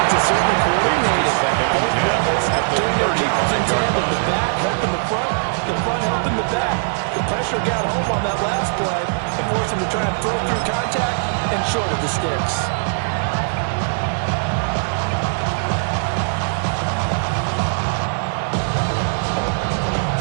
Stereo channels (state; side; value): silent; left; digital silence